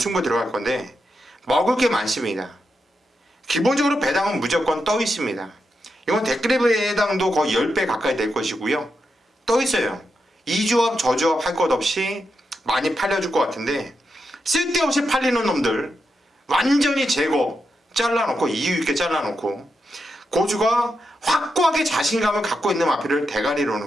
들어갈 건데 먹을 게 많습니다. 기본적으로 배당은 무조건 떠 있습니다. 이건 댓글의 배당도 거의 10배 가까이 될 것이고요. 떠 있어요. 이 조합 저 조합 할 것 없이 많이 팔려줄 것 같은데 쓸데없이 팔리는 놈들 완전히 제거 잘라놓고 이유 있게 잘라놓고 고수가 확고하게 자신감을 갖고 있는 마필을 대가리로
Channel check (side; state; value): both; normal; correlation 0.85